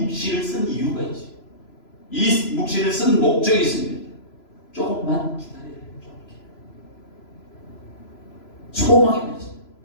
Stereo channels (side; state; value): right; late; 3.0 ms